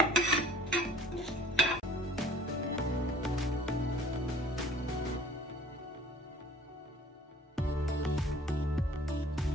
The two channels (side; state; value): both; normal; correlation 0.51